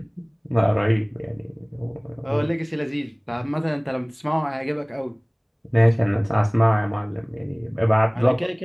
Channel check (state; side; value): identical; both; correlation 1.00